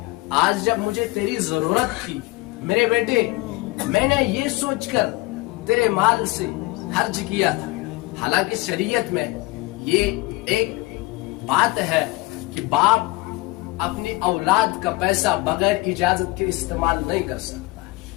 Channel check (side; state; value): right; quieter; 22.2 dB